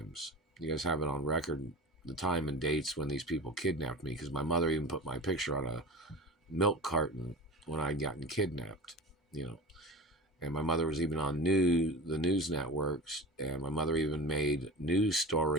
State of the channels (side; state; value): both; normal; correlation 0.32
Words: You guys have it on record, the time and dates when these people kidnapped me, because my mother even put my picture on a milk carton when I'd gotten kidnapped, And my mother was even on the news networks, and my mother even made news